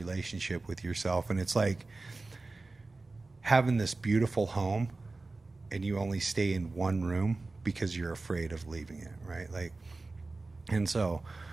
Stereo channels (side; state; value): left; quieter; 3.5 dB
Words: with yourself, and it's like having this beautiful home, and you only stay in one room because you're afraid of leaving it, right? Like, and so